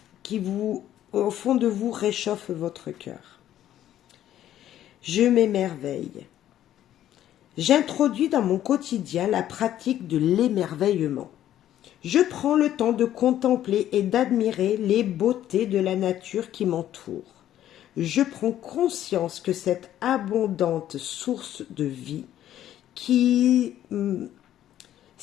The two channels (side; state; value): right; quieter; 11.9 dB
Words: au fond de vous, réchauffent votre cœur. Je m'émerveille. J'introduis dans mon quotidien la pratique de l'émerveillement. Je prends le temps de contempler et d'admirer les beautés de la nature qui m'entoure. Je prends conscience que cette abondante source de vie qui